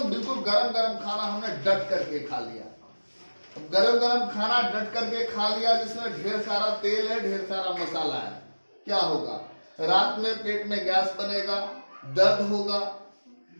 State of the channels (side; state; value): both; inverted; correlation -1.00